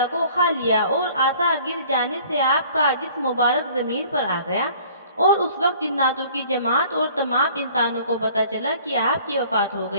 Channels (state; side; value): inverted; both; correlation -0.52